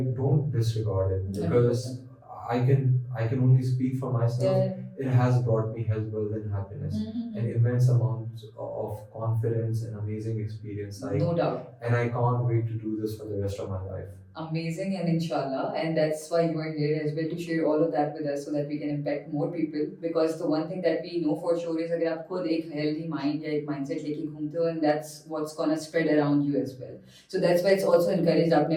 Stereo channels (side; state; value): both; identical; correlation 1.00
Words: don't disregard it because I can only speak for myself. It has brought me health, wealth, and happiness, and immense amounts of confidence and amazing experience. No doubt. And I can't wait to do this for the rest of my life. Amazing, and inshallah, and that's why you are here as well, to share all of that with us so that we can impact more people. Because the one thing that we know for sure is अगर आप खुद एक healthy mind या एक mindset लेके घूमते हो, and that's what's gonna spread around you as well. So that's why it's also encouraged. आपने